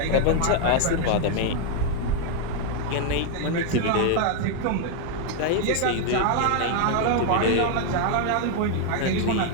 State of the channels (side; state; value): both; different; correlation 0.00